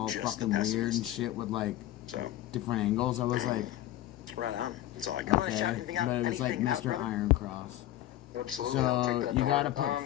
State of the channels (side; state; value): right; quieter; 14.0 dB